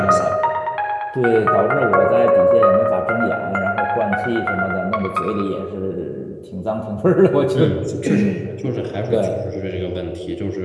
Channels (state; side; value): identical; both; correlation 1.00